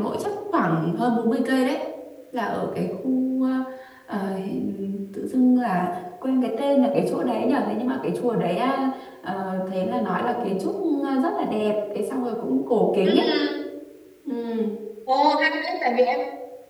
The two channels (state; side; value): identical; both; correlation 1.00